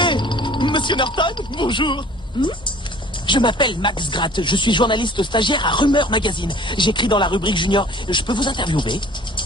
Monsieur Norton, bonjour. Je m'appelle Max Gratt, je suis journaliste stagiaire à Rumeur Magazine. J'écris dans la rubrique junior. Je peux vous interviewer?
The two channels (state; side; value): normal; both; correlation 0.50